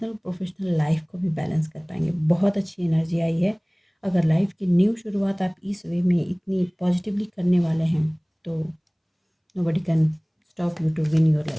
प्रोफेशनल लाइफ को भी बैलेंस कर पाएंगे। बहुत अच्छी एनर्जी आई है। अगर लाइफ की न्यू शुरुआत आप इस वे में इतनी पॉजिटिवली करने वाले हैं तो nobody can stop you to win your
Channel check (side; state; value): both; identical; correlation 1.00